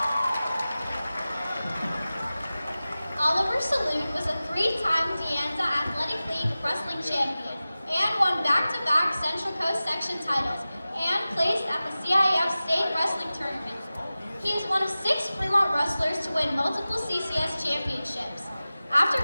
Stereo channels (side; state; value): both; inverted; correlation -0.96